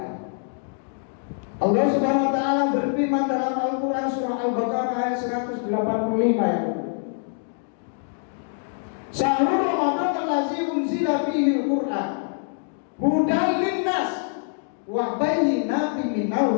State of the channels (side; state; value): right; silent; digital silence